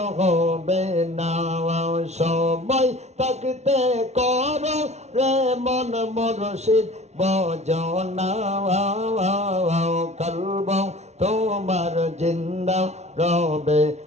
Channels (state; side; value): late; left; 0.32 ms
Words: হবে না। সময় থাকতে করো রে মন মুর্শিদ বজনা। কালব তোমার জিন্দা রবে,